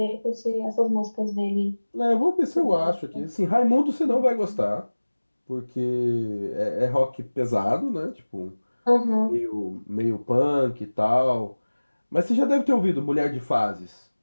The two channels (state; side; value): inverted; both; correlation -1.00